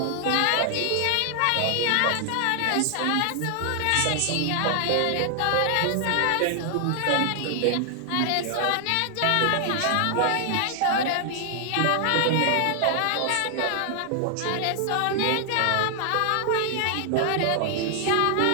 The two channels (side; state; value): both; different; correlation 0.00